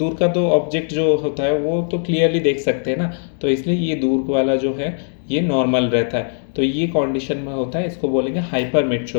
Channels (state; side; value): silent; right; digital silence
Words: का तो ऑब्जेक्ट जो होता है वो तो क्लियरली देख सकते हैं ना, तो इसलिए ये दूर वाला जो है ये नॉर्मल रहता है। तो ये कंडीशन में होता है, इसको बोलेंगे